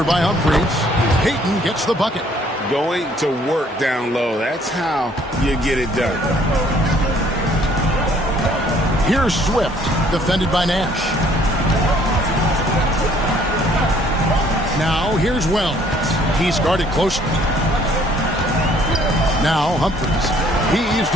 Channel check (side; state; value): both; normal; correlation 0.61